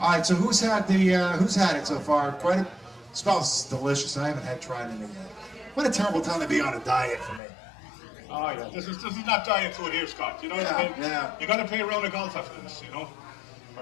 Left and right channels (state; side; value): drops out; right; at 7.4 s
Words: right, so who's had it so far? Quite a smells delicious. I haven't had tried anything yet. What a terrible time to be on a diet for me. Oh yeah, this is not diet food here, Scott. You know what I mean? Yeah. You got to pay a round of golf after this, you know.